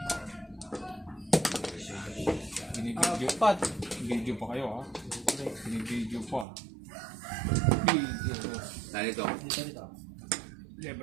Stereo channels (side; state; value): left; drops out; at 6.5 s